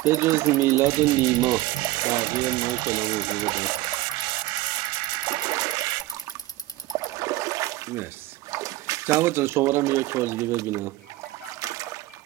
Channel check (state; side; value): quieter; left; 16.5 dB